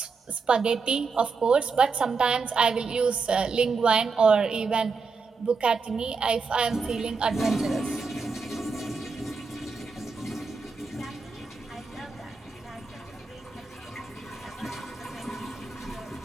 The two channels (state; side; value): quieter; left; 4.7 dB